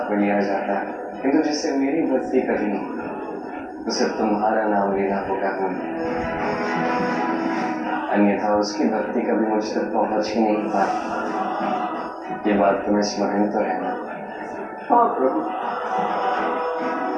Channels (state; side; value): identical; both; correlation 1.00